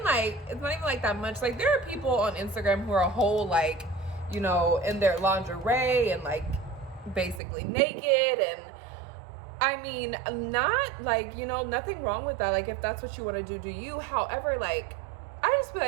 like that much. Like, there are people on Instagram who are a whole like, you know, in their lingerie and like basically naked, and I mean, not like, you know, nothing wrong with that. Like, if that's what you want to do, do you. However, like, I just feel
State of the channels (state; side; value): drops out; left; at 7.4 s